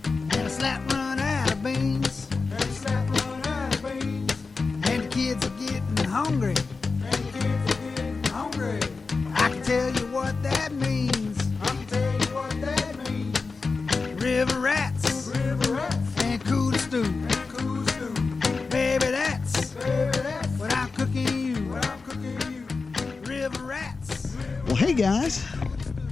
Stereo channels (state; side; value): quieter; right; 4.3 dB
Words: And a slap run out of beans. And a slap run out of beans. And the kids are getting hungry. And the kids are getting hungry. I can tell you what that means. I can tell you what that means. River rats. River rats. And cooler stew. And cool stew. Baby, that's What I'm cooking you. I'm cooking you. River rats. Well, hey guys,